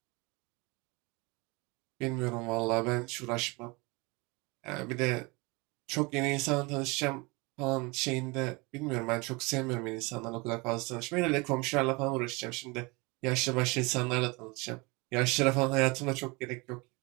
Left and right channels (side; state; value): left; quieter; 26.6 dB